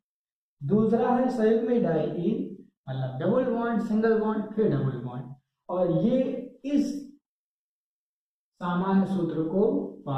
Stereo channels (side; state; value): both; identical; correlation 1.00